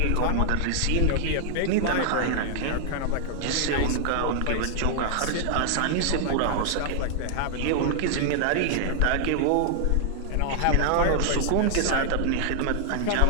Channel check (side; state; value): both; different; correlation 0.00